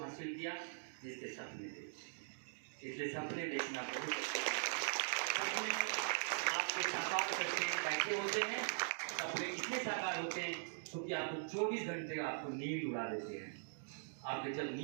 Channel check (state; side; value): silent; left; digital silence